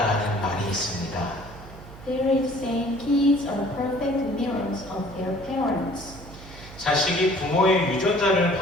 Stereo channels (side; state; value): right; noise; hum, 17 dB below the sound